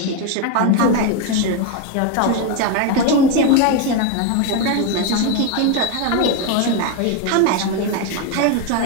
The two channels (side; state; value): both; different; correlation 0.02